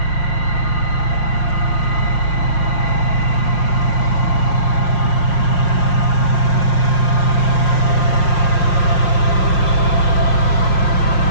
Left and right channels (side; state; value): right; late; 5.5 ms